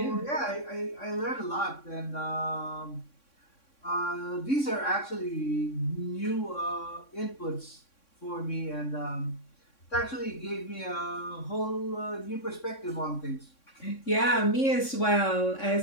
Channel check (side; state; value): right; late; 3.6 ms